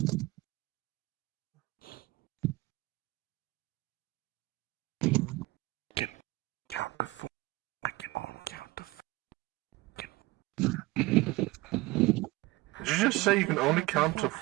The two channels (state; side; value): quieter; left; 20.8 dB